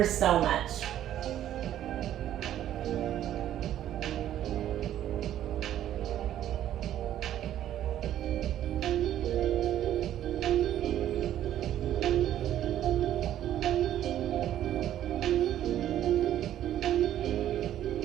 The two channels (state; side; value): quieter; left; 11.7 dB